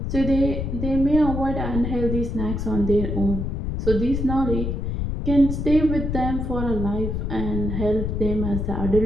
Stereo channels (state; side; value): noise; left; rumble, 2 dB below the sound